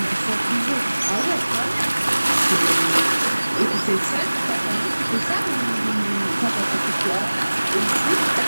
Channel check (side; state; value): both; inverted; correlation -1.00